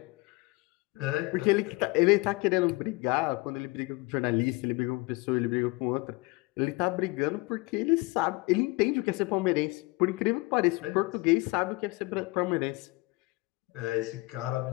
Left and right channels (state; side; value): quieter; right; 24.5 dB